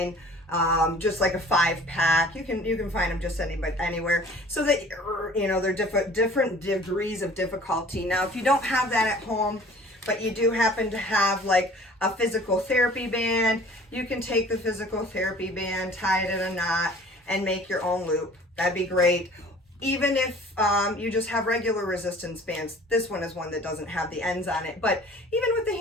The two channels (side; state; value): both; normal; correlation 0.49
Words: just like a 5-pack. You can find them just anywhere. So that they're different degrees of difficulty. Now, if you don't have that at home, but you do happen to have like a physical therapy band, you can take the physical therapy band, tie it in a knot, and make your own loop. That'd be great. Even if you just have regular resistance bands, this one is one that doesn't have the ends on it, but even with the